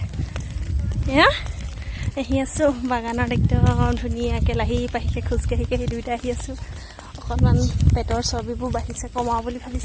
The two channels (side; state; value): both; identical; correlation 1.00